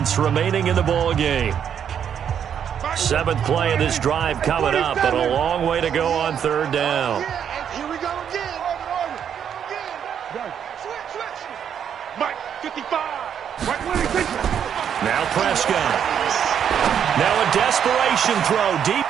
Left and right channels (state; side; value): quieter; left; 8.5 dB